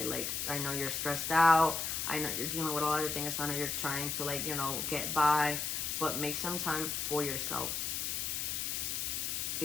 like, I know you're stressed out. I know you're dealing with a lot of things. I know you're trying to, like, you know, get by, but make some time for yourself.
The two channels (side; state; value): left; noise; hiss, 1 dB below the sound